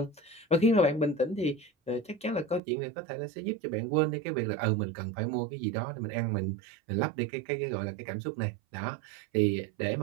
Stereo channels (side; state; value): left; drops out; at 2.6 s